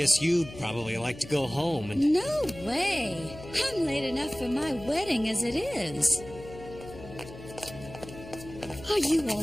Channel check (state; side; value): noise; left; hum, 15 dB below the sound